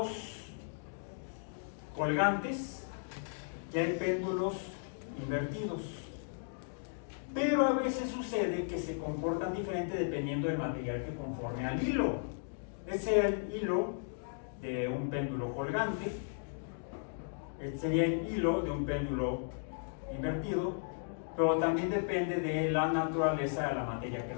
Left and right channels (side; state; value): right; silent; digital silence